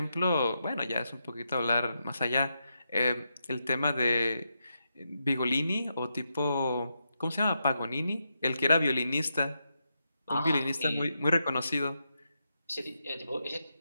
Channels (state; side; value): inverted; both; correlation -0.85